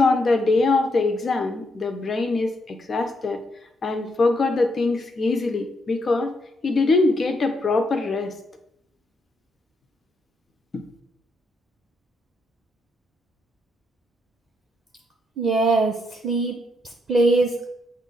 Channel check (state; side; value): normal; both; correlation 0.77